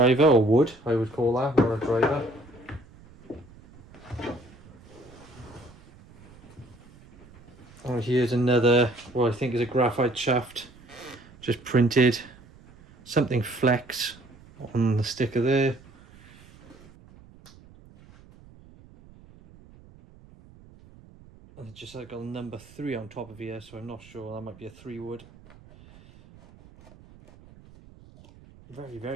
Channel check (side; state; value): right; noise; rumble, 23 dB below the sound